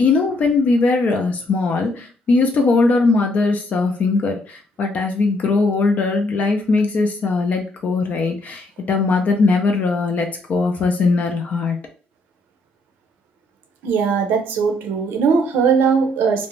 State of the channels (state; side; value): normal; both; correlation 0.69